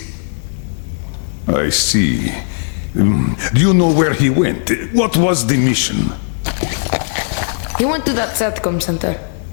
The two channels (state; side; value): silent; right; 68 dB below the other